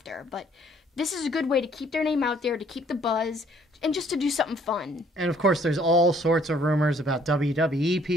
but this is a good way to keep their name out there, to keep the buzz, and just to do something fun. And, of course, there's all sorts of rumors about WWE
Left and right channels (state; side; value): normal; both; correlation 0.62